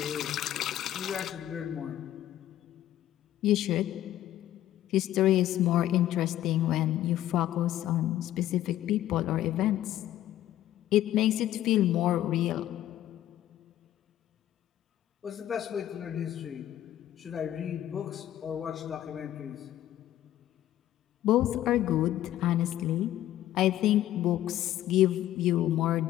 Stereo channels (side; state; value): right; quieter; 12.9 dB